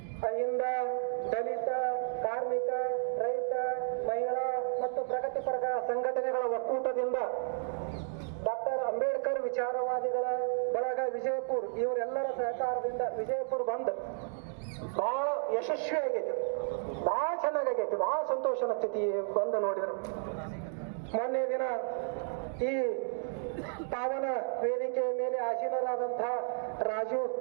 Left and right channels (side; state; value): left; silent; digital silence